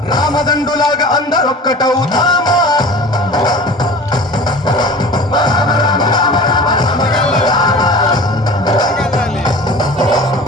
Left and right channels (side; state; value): both; normal; correlation 0.39